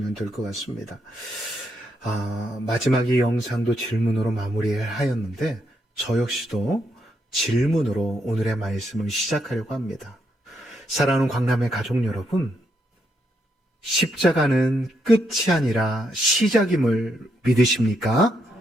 될 것 같습니다. 마지막 이 영상도 질문으로 마무리하였는데 저 역시도 질문으로 오늘의 말씀을 시작하려고 합니다. 사랑하는 광남의 가족 여러분, 십자가는 끝이 아니라 시작임을 믿으십니까?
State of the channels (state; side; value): normal; both; correlation 0.78